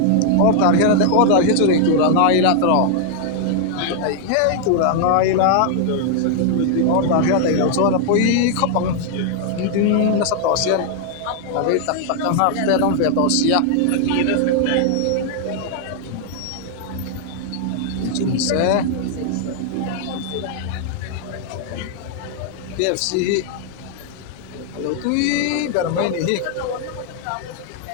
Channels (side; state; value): both; different; correlation 0.00